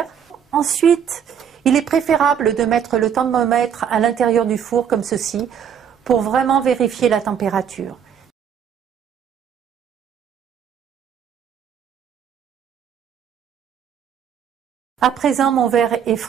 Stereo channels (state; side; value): quieter; left; 8.2 dB